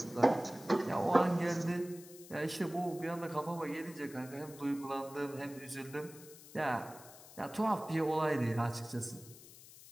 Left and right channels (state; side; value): noise; left; hiss, 18 dB below the sound